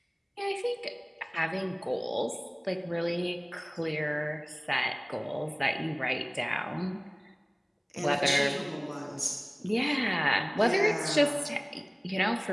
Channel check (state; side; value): identical; both; correlation 1.00